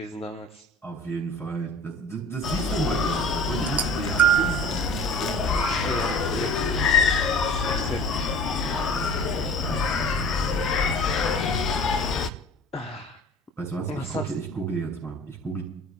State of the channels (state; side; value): normal; both; correlation 0.43